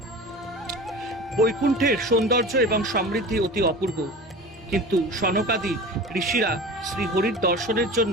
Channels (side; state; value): both; normal; correlation 0.34